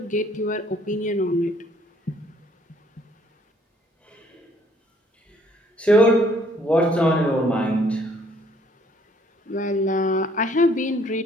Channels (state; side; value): normal; both; correlation 0.63